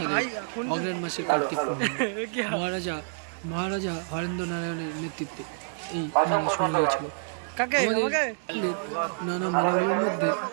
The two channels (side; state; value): left; silent; digital silence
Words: অগ্রহায়ণ মাসের কার্তিক পূর্ণিমা। মহারাজা হরেন্দ্র নারায়ণের নেতৃত্বে এই মেলা শুরু হয়েছিল। আমাদের নানা মেলাগুলোর মধ্যে